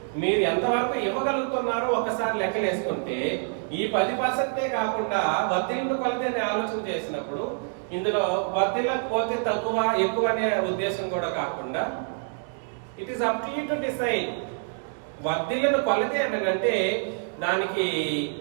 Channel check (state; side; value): silent; left; 61 dB below the other